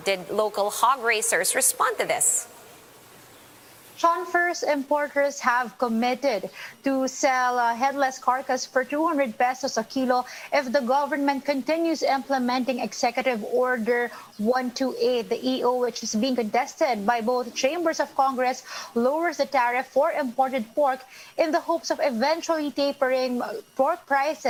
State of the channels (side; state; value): both; identical; correlation 1.00